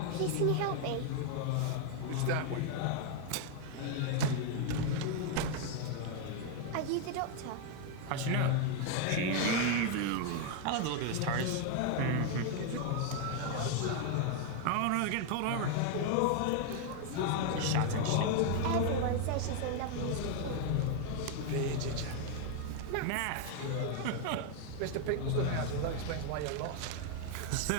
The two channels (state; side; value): different; both; correlation 0.00